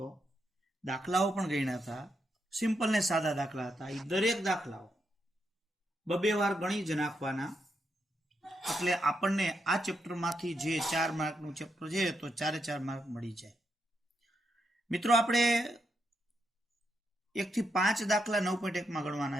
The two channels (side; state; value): both; normal; correlation 0.82